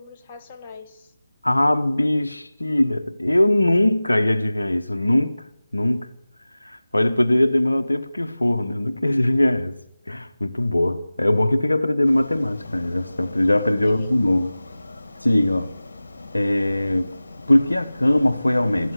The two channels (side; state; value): both; inverted; correlation -0.97